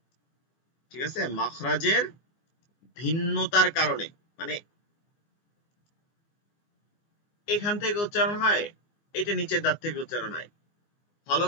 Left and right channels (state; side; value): late; right; 14 ms